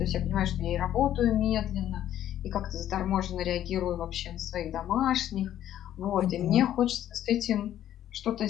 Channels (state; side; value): quieter; right; 11.6 dB